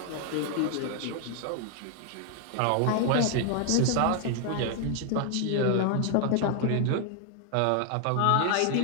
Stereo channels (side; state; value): both; different; correlation 0.00